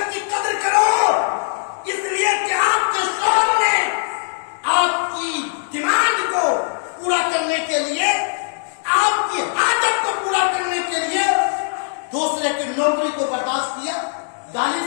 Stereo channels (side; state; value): right; silent; digital silence